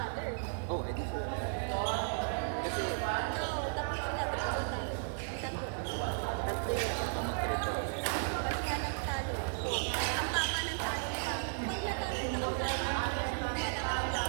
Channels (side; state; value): left; silent; digital silence